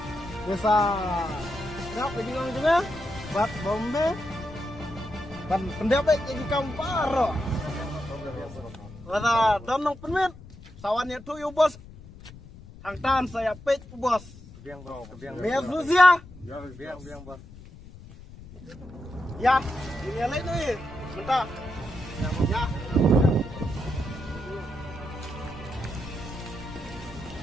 bisa nak pergi ngong juga. Bat bombe. Ban pendapat jadi kam paro. Wala don nong penmet. Sawannya tu yo bos. Hang tan saya pek bos. Kebiang bos, kebiang. Biar Rusia. Ya, kebiang bos. Ya, ini lain ni. Bentar. Ya.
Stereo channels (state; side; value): noise; left; rumble, 18 dB below the sound